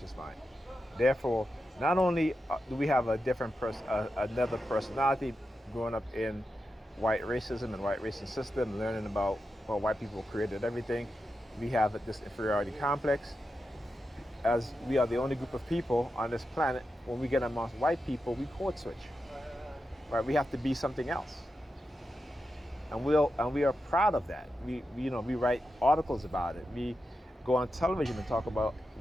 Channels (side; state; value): both; normal; correlation 0.89